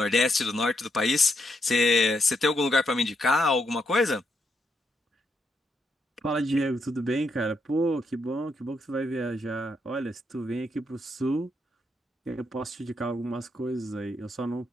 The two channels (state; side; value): normal; both; correlation 0.79